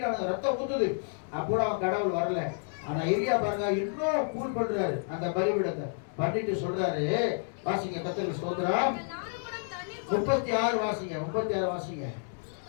ரத்தம் ஊத்துது. அப்போ அவன் கடவுள் வரல. ஆனா எரியா பாருங்க, இன்னும் கூல் பண்றாரு அந்த பலிபீடத்தை. பண்ணிட்டு சொல்றாரு, வாசிங்க கர்த்தருக்கு ஸ்தோத்திரம். 36 வாசிங்க, 36 வாசிங்க.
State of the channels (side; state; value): right; silent; digital silence